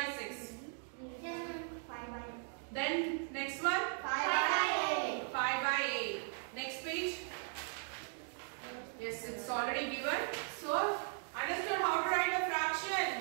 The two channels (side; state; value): left; silent; 52 dB below the other